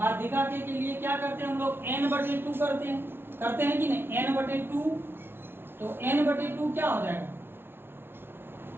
के लिए क्या करते हैं हम लोग, n/2 करते हैं कि नहीं, n/2। तो n/2 क्या हो जाएगा,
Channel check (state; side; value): late; left; 0.11 ms